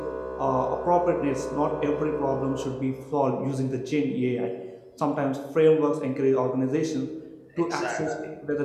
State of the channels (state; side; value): identical; both; correlation 1.00